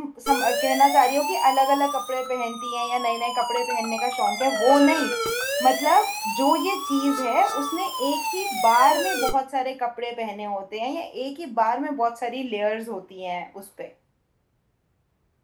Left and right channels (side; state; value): both; identical; correlation 1.00